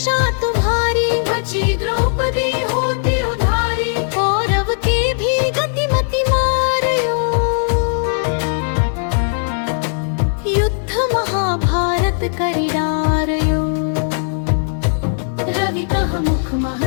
तुम्हारी बची द्रौपदी होती उधारी कौरव के भी गतिमति मारयो युद्ध महाभारत करी डारयो रवि कह मुख मह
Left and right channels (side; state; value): right; silent; digital silence